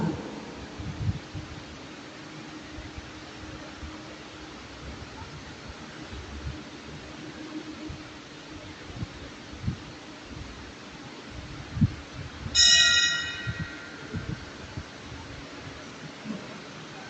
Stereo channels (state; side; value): identical; both; correlation 1.00